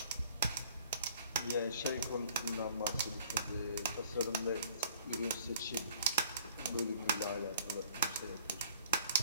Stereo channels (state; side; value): inverted; both; correlation -0.55